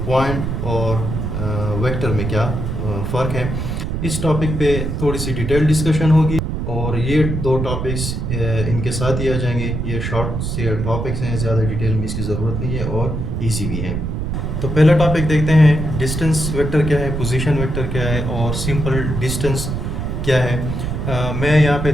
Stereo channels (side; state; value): right; noise; rumble, 3 dB below the sound